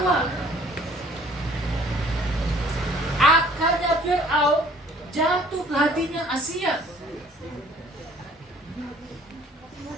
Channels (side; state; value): both; normal; correlation 0.55